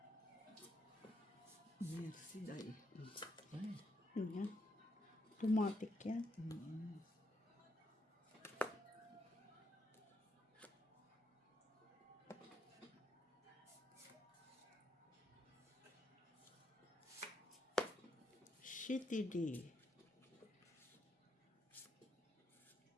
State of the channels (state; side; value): normal; both; correlation 0.78